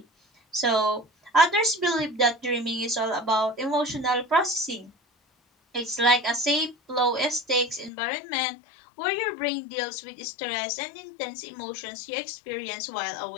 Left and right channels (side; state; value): right; drops out; at 7.9 s